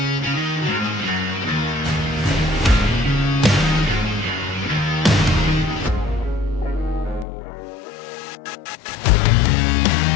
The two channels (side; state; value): right; drops out; at 7.2 s